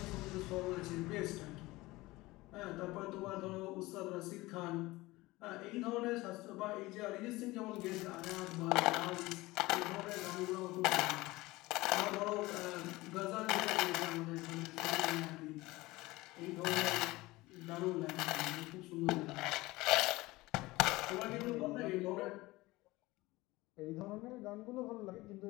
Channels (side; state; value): right; quieter; 20.1 dB